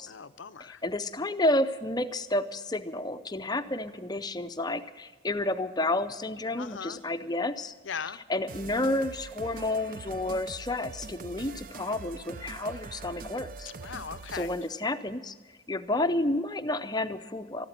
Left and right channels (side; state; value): both; normal; correlation 0.40